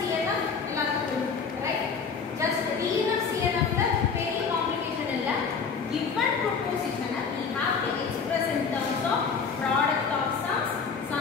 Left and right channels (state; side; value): quieter; right; 5.6 dB